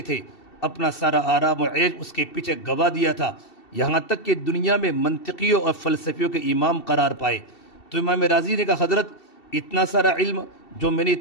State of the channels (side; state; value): right; late; 2.7 ms